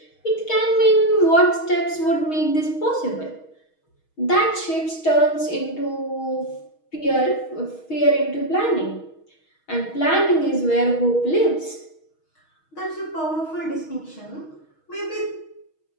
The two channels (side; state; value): right; late; 6.3 ms